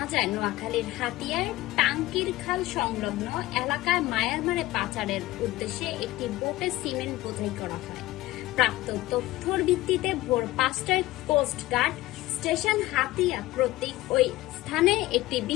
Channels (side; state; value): right; quieter; 17.6 dB